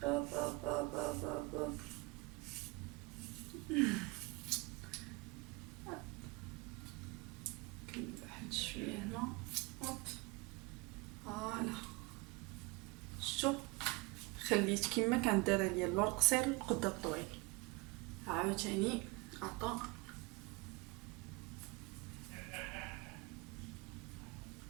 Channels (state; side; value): quieter; left; 24.9 dB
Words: أوب أوب أوب أوب أوب أوب. واحد شويه هنا. هوب فوالا شتو خليت كما كانت دايره ليا اللور قصير والقدام طويل. عاوتاني عطا